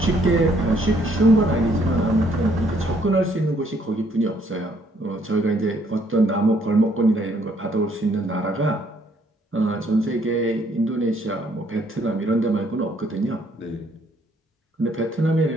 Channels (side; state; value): both; normal; correlation 0.66